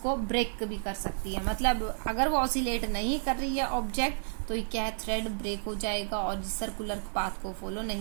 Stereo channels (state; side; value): silent; left; digital silence